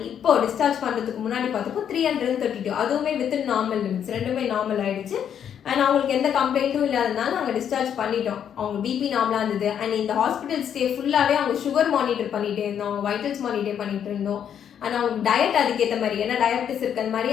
இப்போ டிஸ்சார்ஜ் பண்ணுறதுக்கு முன்னாடி பார்த்தப்போ 332, அதுவுமே வித்தின் நார்மல் லிமிட்ஸ், ரெண்டுமே நார்மல் ஆயிடுச்சு. அண்ட் அவங்களுக்கு எந்த கம்ப்ளைண்ட்டும் இல்லாதனால நாங்கள் டிஸ்சார்ஜ் பண்ணிட்டோம். அவங்க பிபி நார்மலாக இருந்தது. அண்ட் இந்த ஹாஸ்பிட்டல் ஸ்டே ஃபுல்லாகவே அவங்க சுகர் மானிட்டர் பண்ணிகிட்டே இருந்தோம், அவங்க வைட்டல்ஸ் மானிட்டர் பண்ணிட்டு இருந்தோம். அண்ட் அவங்க டயட் அதுக்கேற்ற மாதிரி, ஏன்னா டயபிட்டிஸ் இருக்கிற மாதிரி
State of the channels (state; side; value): quieter; right; 8.8 dB